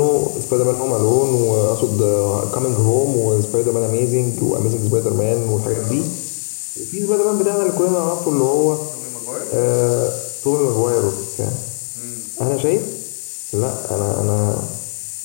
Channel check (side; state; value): right; silent; digital silence